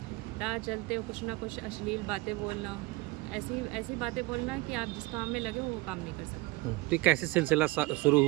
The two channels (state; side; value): quieter; left; 21.5 dB